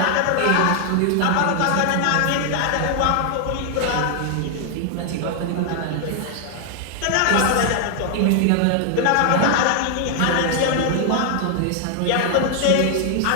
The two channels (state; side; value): different; both; correlation 0.00